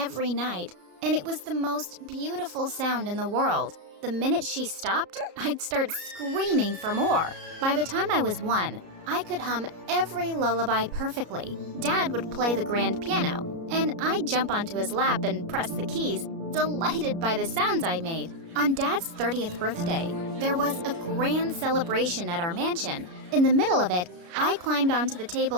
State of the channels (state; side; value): late; left; 33 ms